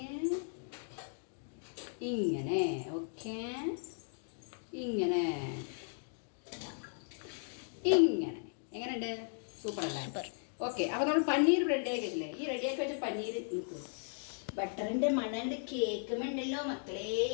ഇങ്ങനെ. ഓക്കെ, ഇങ്ങനെ ഇങ്ങനെ. എങ്ങനെയുണ്ട്? സൂപ്പർ അല്ലേ? ഓക്കെ, അപ്പോൾ നമ്മൾ പനീർ റെഡിയാക്കി വെച്ചില്ലേ. ഈ റെഡിയാക്കി വെച്ച പനീർ ബട്ടറിൻ്റെ മണണ്ട് കേൾക്കുമ്പോണ്ടല്ലോ മക്കളെ,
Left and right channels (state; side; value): silent; right; 54 dB below the other